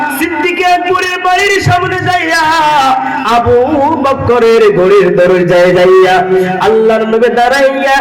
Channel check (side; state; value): both; identical; correlation 1.00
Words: সিদ্দিক আকবরের বাড়ির সামনে যাইয়া আবু বকরের ঘরের দরজায় যাইয়া আল্লাহর নবী দাঁড়াইয়া